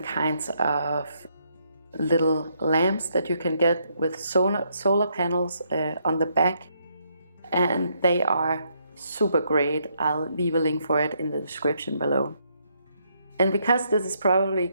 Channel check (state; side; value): inverted; both; correlation -0.74